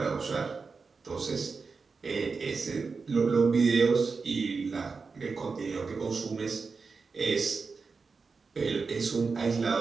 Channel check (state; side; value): quieter; left; 4.7 dB